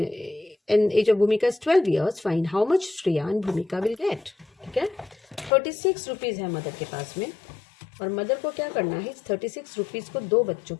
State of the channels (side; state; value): right; drops out; at 5.5 s